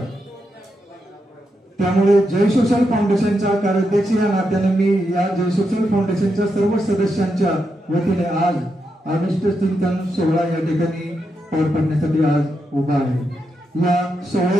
त्यामुळे जय सोशल फाउंडेशनच्या कार्याध्यक्ष या नात्याने मी या जय सोशल फाउंडेशनच्या सर्व सदस्यांच्या वतीने आज अभिष्ट चिंतन सोहळा या ठिकाणी पार पडण्यासाठी आज उभा आहे। या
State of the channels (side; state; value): both; normal; correlation 0.84